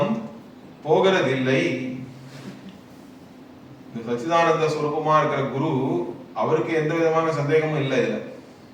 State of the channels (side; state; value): both; identical; correlation 1.00